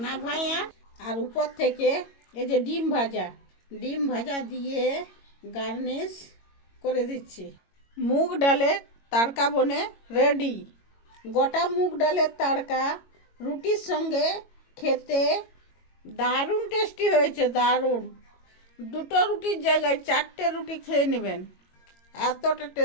নাভাইয়া আর উপর থেকে এই যে ডিম ভাজা দিয়ে গার্নিশ করে দিচ্ছি। মুগ ডালের তড়কা বনে রেডি। গোটা মুগ ডালের তড়কা রুটির সঙ্গে খেতে দারুণ টেস্টি হয়েছে, দারুণ। 2টো রুটির জায়গায় 4টে রুটি খেয়ে নেবেন, এতটা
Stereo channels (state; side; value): late; right; 22 ms